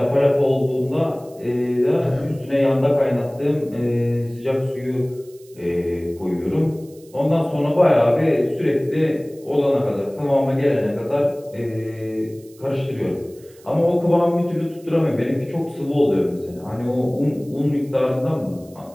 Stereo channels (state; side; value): noise; right; hiss, 27 dB below the sound